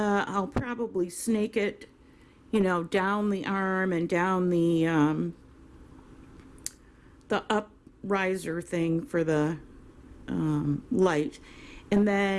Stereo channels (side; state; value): both; identical; correlation 1.00